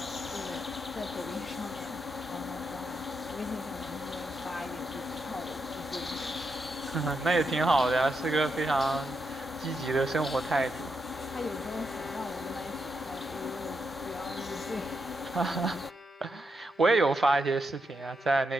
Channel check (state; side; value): normal; both; correlation 0.82